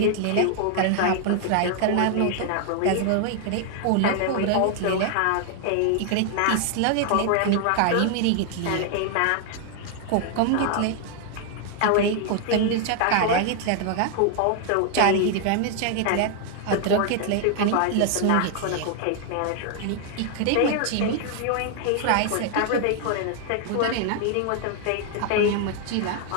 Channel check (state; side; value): different; both; correlation 0.00